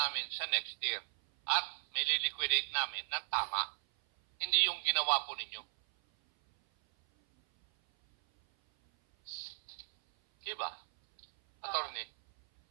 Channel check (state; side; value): silent; left; 54 dB below the other